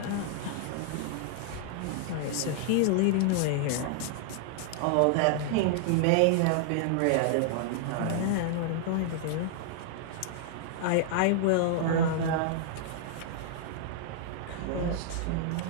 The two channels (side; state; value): both; different; correlation -0.01